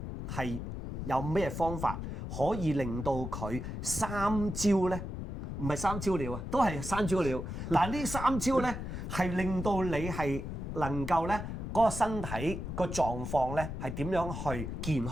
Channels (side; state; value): left; noise; rumble, 6 dB below the sound